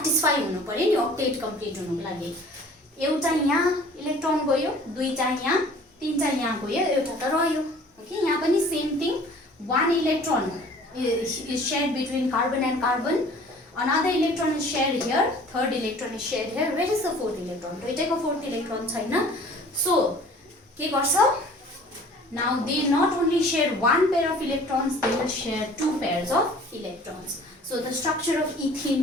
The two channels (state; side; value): normal; both; correlation 0.49